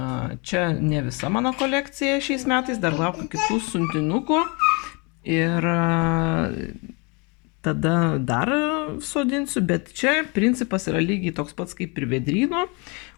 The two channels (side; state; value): right; quieter; 30.7 dB